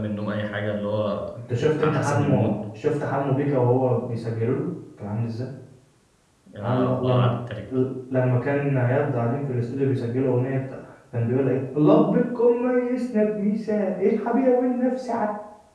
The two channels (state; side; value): identical; both; correlation 1.00